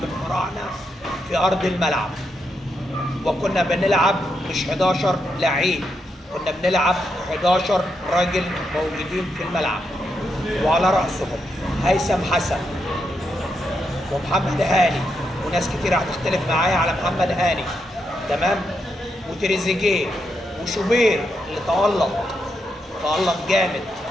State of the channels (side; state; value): both; normal; correlation 0.82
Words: الفراعنة في أرض الملعب. وكنا بنلعب مش 11 لعيب، كنا بنلعب 11 راجل موجودين في الملعب، وعلى رأسهم هيثم حسن ومحمد هاني، وناس كتير هتختلف معايا على محمد هاني، تمام، وتريزيجيه وشوبير اللي تألق جامد،